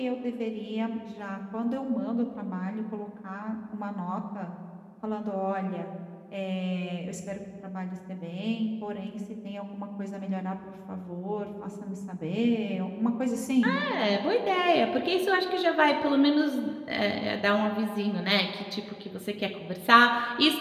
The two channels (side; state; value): both; identical; correlation 1.00